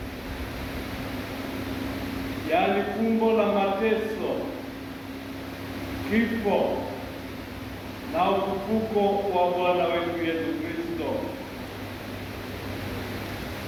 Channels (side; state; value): both; identical; correlation 1.00